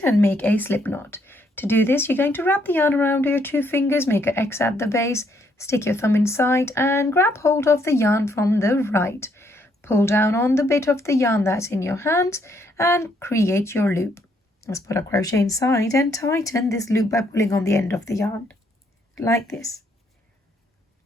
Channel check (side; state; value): both; normal; correlation 0.71